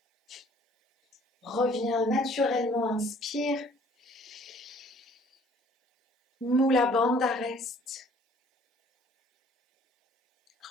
Reviens naturellement, inspire. Mula Bandha, reste.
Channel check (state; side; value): normal; both; correlation 0.56